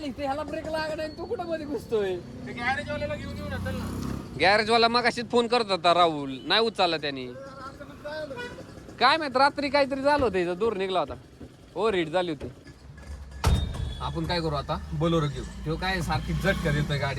ते ह्याला ब्रेक लागला नाही, तू कुठं मध्ये घुसतोय. गॅरेजवाल्याला घेऊन येऊ ना. गॅरेजवाला मग अशीच फोन करत होता राहुल, नाही उचलला त्यांनी. काय माहित रात्री काहीतरी झालं होतं, इथं दूर निघला होता, ओव्हर हीट झाली होती. आपण काय करू आता, बोलेरो घेऊ. तो काय सारखी झटका देतोय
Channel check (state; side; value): identical; both; correlation 1.00